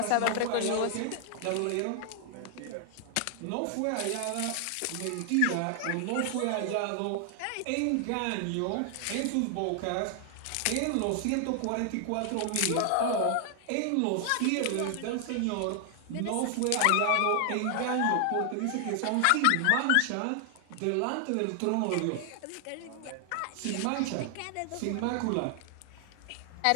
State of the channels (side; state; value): both; different; correlation 0.00